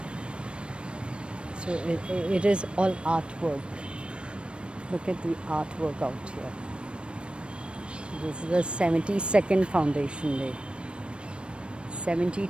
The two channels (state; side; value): late; left; 0.057 ms